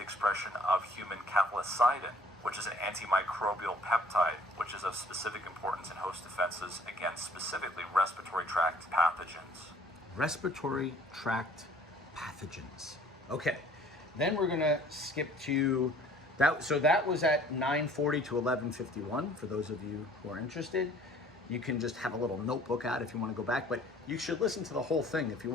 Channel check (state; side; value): normal; both; correlation 0.55